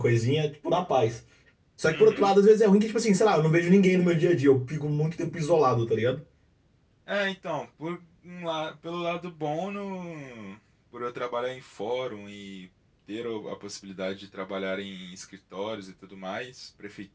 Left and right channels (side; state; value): both; identical; correlation 1.00